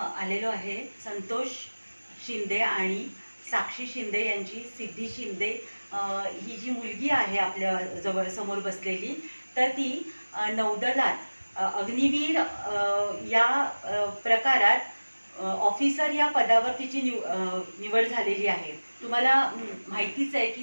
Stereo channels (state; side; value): inverted; both; correlation -1.00